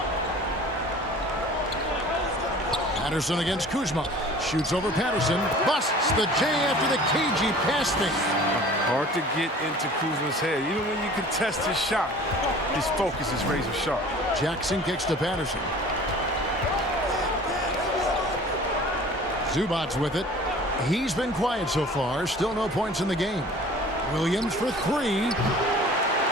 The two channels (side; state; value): both; normal; correlation 0.45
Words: Patterson against Kuzma. Shoots over Patterson. Busts the J after the cagey pass thing. Hard to get into Kuzma's head. Even when you contest his shot, his focus is razor sharp. Jackson kicks to Patterson. Zubac with it. He's been quiet so far. Still no points in the game. Williams for 3.